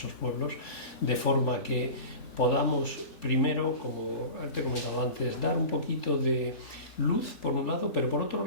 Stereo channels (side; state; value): left; late; 4.0 ms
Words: pueblos, de forma que podamos, primero, como te he comentado antes, dar un poquito de luz por un lado, pero por otro